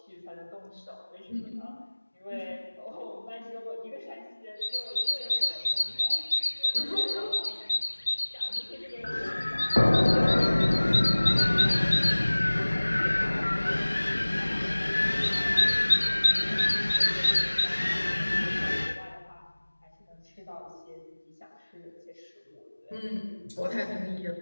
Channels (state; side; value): inverted; both; correlation -1.00